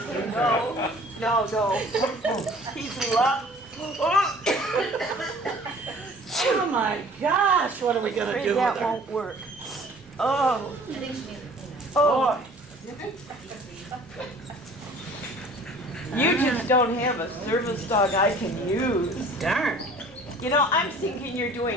He's love. Oh, my gosh. What are we going to do with That her? won't work. Oh, I think she needs a peanut. oh. You just don't have a service dog I can use. Darn. You know, I'm thinking you're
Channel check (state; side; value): normal; both; correlation 0.50